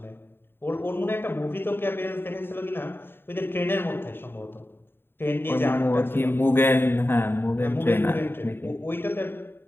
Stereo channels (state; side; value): late; right; 0.11 ms